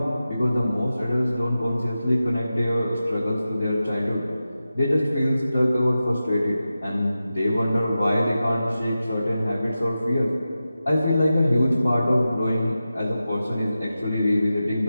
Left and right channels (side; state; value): both; inverted; correlation -0.93